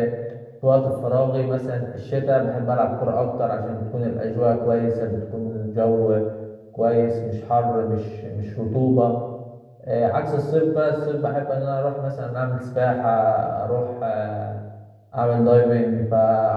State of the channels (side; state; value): both; identical; correlation 1.00